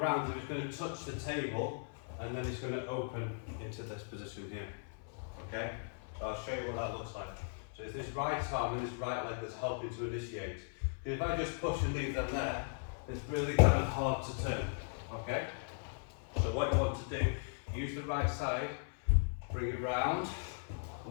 and it's going to touch the table, and then it's going to open into this position here. Okay? So I'll show you what that looks like. So it's this right arm and this right leg that's helping to initiate. If I just push and leave them there, it's really kind of hard to turn. Okay? So what you want to do, use the right side, bring it round,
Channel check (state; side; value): silent; right; 53 dB below the other